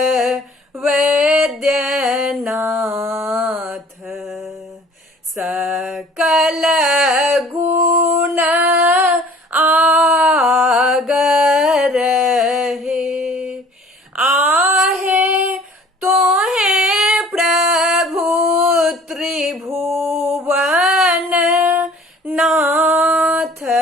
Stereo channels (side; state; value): both; normal; correlation 0.51